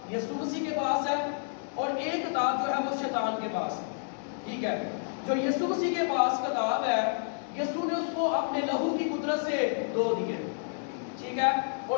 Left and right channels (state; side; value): silent; right; 58 dB below the other